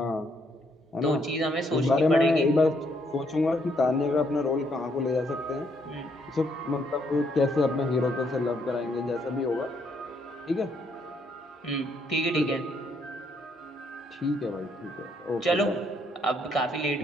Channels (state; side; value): normal; both; correlation 0.71